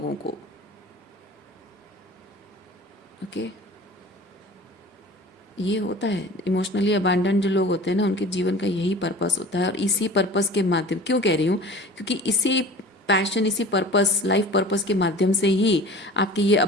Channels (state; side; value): normal; both; correlation 0.41